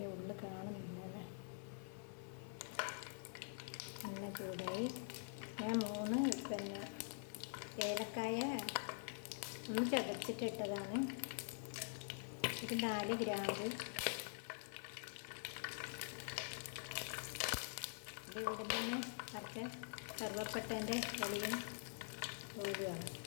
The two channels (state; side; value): silent; right; digital silence